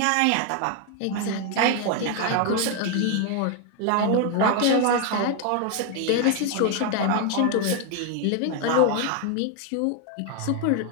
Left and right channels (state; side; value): different; both; correlation 0.01